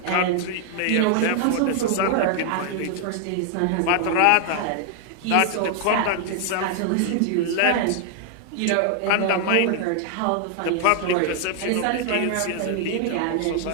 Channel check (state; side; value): different; both; correlation 0.00